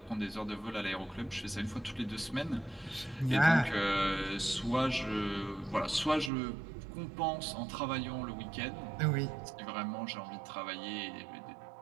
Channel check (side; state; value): left; drops out; at 6.3 s